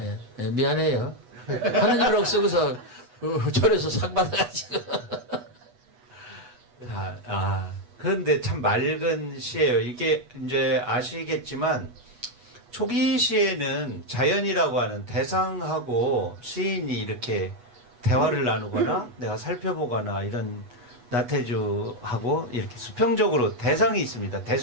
미안해요. 하나님이라고 쓰고서 절에서 상 받아가지고. 그런데 참 맑은 시예요. 이게 이제 아시겠지만 초기 시에는 자연이라고 하는 대상하고 시인이 이렇게 대화를 나누거나 내가 살펴보거나 이런 나태주하고 이렇게 수평적으로 대상이 있습니다.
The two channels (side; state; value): left; late; 8.2 ms